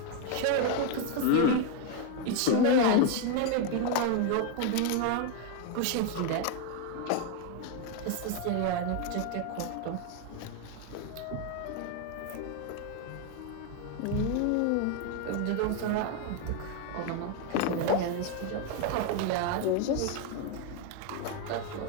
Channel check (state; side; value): different; both; correlation 0.01